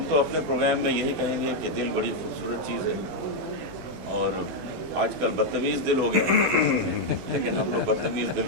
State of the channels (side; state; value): left; late; 16 ms